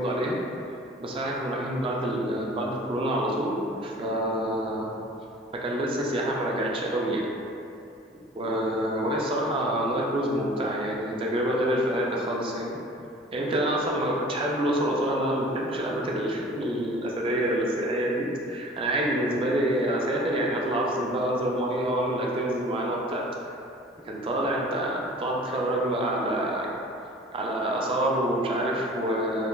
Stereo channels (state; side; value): normal; both; correlation 0.45